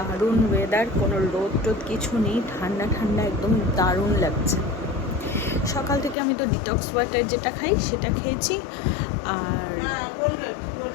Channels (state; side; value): drops out; right; at 6.2 s